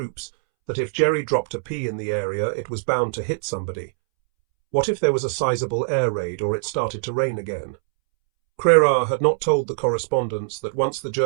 that if Jerry dropped a pea in the area, it was bound to hit somebody. What if there was a sizable air raid or it started to rain again? Crerar had not told the correspondents that once the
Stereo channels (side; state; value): left; silent; 64 dB below the other